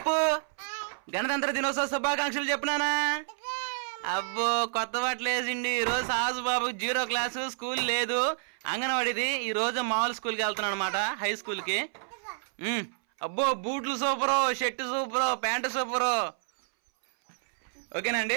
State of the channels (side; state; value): left; silent; 58 dB below the other